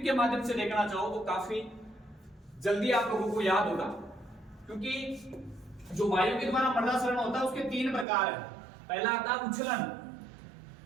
के माध्यम से देखना चाहो तो काफी जल्दी आप लोगों को याद होगा, क्योंकि जो वायु के द्वारा मृदा सरण होता है उसके 3 प्रकार है। पहला आता है उछलन,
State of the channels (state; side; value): drops out; left; at 8.1 s